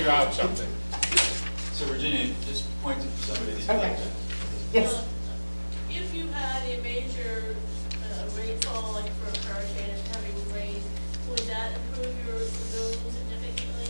out something. So Virginia, just point to somebody that you Okay. like. Yes. If you had a major rainfall, like for a hurricane and heavy rain, would that improve your lagoon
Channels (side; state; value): both; inverted; correlation -1.00